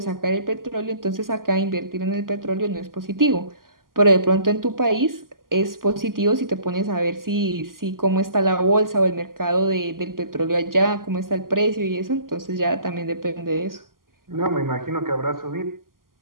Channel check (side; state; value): left; late; 0.91 ms